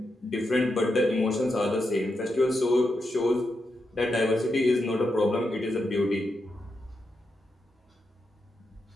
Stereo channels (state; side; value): normal; both; correlation 0.85